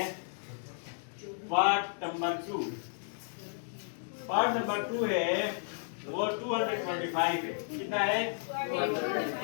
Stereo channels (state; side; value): silent; right; digital silence